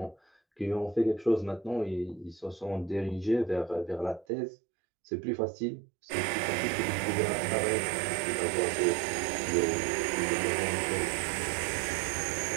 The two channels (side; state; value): left; drops out; at 4.2 s